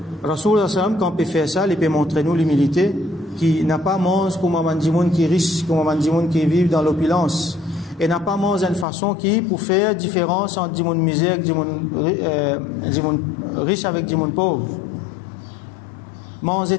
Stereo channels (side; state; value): right; drops out; at 8.8 s